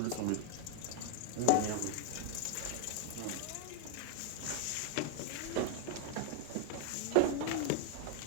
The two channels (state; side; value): different; both; correlation -0.01